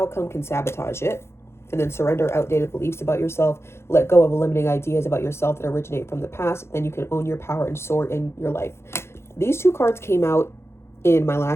can sabotage it. And then surrender outdated beliefs about yourself. Let go of limiting ideas about yourself that originate from the past. Then you can own your power and soar in your life. These two cards came out in my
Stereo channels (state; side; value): late; right; 0.12 ms